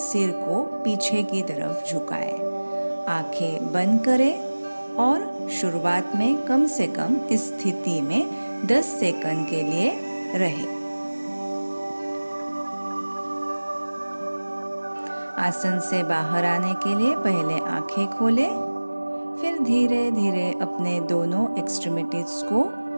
को पीछे की तरफ झुकाएं। आंखें बंद करें और शुरुआत में कम से कम इस स्थिति में 10 सेकंड के लिए रहे। आसन से बाहर आने के लिए पहले आंखें खोलें। फिर धीरे धीरे अपने दोनों एक्सट्रीमिटीज को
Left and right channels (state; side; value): inverted; both; correlation -1.00